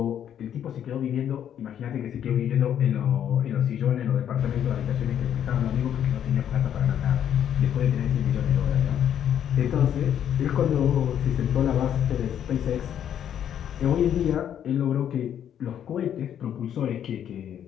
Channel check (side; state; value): right; quieter; 9.7 dB